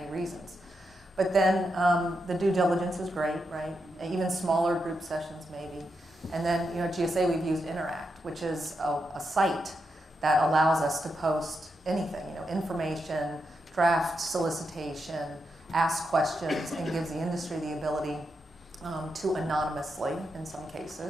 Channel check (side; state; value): both; normal; correlation 0.85